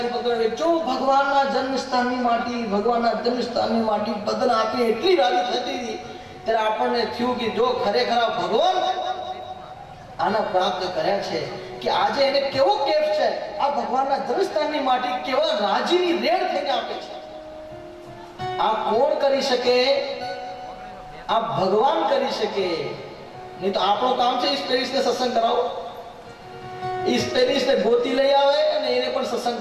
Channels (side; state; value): both; identical; correlation 1.00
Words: પકડે, જો ભગવાનના જન્મસ્થાનની માટી, ભગવાનના જન્મસ્થાનની માટી બદલ આપી એટલી રાજી થતી હતી. ત્યારે આપણને થયું કે જો ખરેખર ભગવાન આના પ્રાપ્ત કર્યા છે કે આજે એને કેવો કેફ છે, આ ભગવાનના જન્મસ્થાનની માટી કેવા રાજીની રેડ થઈને આપે છે. આ કોણ કરી શકે? આ ભગવાન કરી શકે. નહીં તો આપણું કામ છે સ્પેરિસને સત્સંગ કરાવો, સ્પેરિસને ગોતી લઈ આવે અને એને પણ સત્સંગ